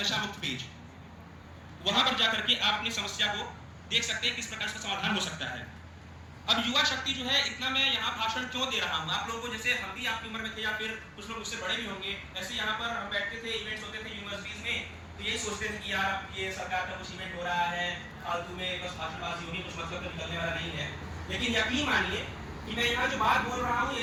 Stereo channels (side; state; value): both; identical; correlation 1.00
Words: नशा मुक्त पेज। वहां पर जाकर के आप अपनी समस्या को देख सकते हैं किस प्रकार से समाधान हो सकता है। अब युवा शक्ति जो है, इतना मैं यहाँ भाषण क्यों दे रहा हूँ, आप लोगों को जैसे हम भी आपकी उम्र में थे या फिर कुछ लोग उससे बड़े भी होंगे, ऐसे यहाँ पर हम बैठते थे, इवेंट्स होते थे यूनिवर्सिटीज में, तो यही सोचते थे कि यार ये सरकार का कुछ इवेंट हो रहा है, फालतू में बस भाषणबाजी होगी, कुछ मतलब तो निकलने वाला नहीं है। लेकिन यकीन मानिए कि मैं यहाँ जो बात बोल रहा हूँ,